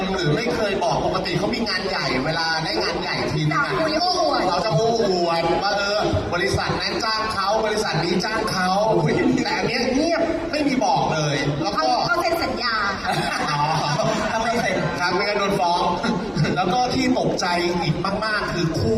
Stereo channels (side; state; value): both; identical; correlation 1.00